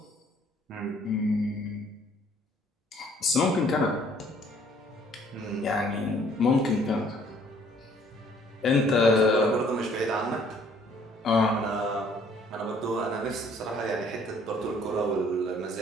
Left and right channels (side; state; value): both; normal; correlation 0.60